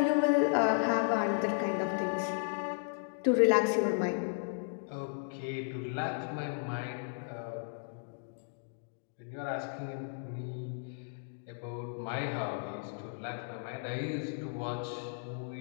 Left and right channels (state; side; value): silent; right; digital silence